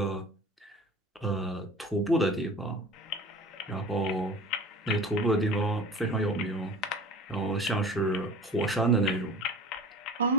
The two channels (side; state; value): both; normal; correlation 0.41